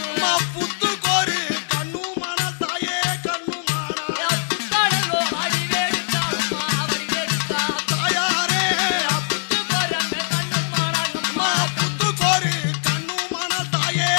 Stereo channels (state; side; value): silent; right; digital silence